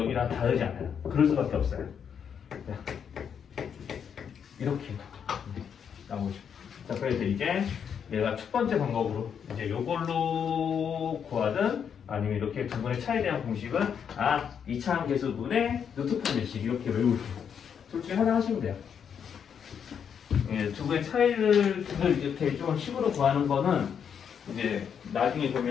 다르지 않아요. 그럴 수밖에 없어요. 자, 이렇게 나오죠. 자, 그래서 이제 내가 첫 번째 방법으로 이제 요걸로 구하든 아니면 이렇게 두 분의 차이에 대한 공식은 이차함 계수분의 루트판 몇식 이렇게 외우세요. 둘 중에 하나 하시면 돼요. 예, 두 분의 차이를 이렇게 좀 식으로 구하는 거는 이제 나중에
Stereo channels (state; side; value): quieter; right; 7.6 dB